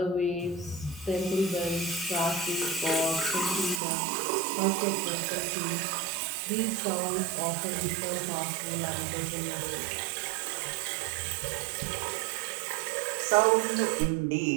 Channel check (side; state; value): left; drops out; at 3.8 s